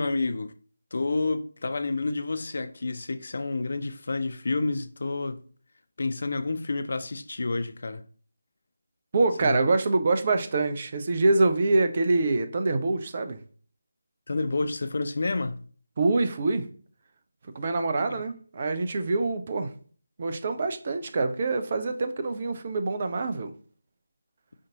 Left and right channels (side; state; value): both; inverted; correlation -0.89